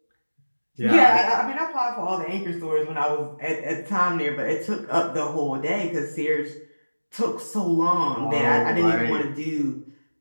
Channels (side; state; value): both; inverted; correlation -1.00